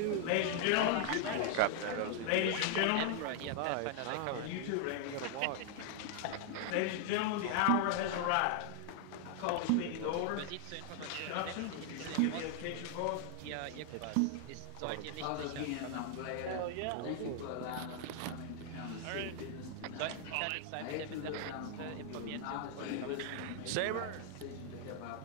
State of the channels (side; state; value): both; different; correlation 0.00